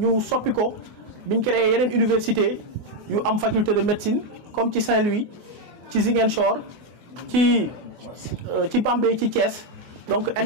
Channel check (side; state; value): left; late; 24 ms